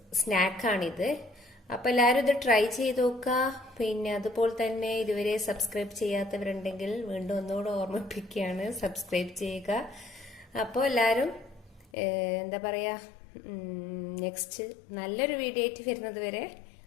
സ്നാക്കാണിത്. അപ്പൊ എല്ലാവരും ഇത് ട്രൈ ചെയ്ത് നോക്കുക. പിന്നെ അതുപോലെ തന്നെ ഇതുവരെ സബ്സ്ക്രൈബ് ചെയ്യാത്തവരുണ്ടെങ്കിൽ വീണ്ടും ഒന്നുകൂടെ ഓർമ്മിപ്പിക്കുകയാണ്, സബ്സ്ക്രൈബ് ചെയ്യുക. അപ്പോൾ എല്ലാവരും എന്താ പറയാ, നെക്സ്റ്റ് നല്ലൊരു വീഡിയോ ആയിട്ട് വരുന്നത് വരെ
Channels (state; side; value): drops out; right; at 11.9 s